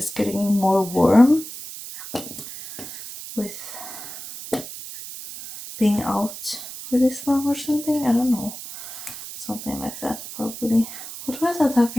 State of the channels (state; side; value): noise; right; hiss, 11 dB below the sound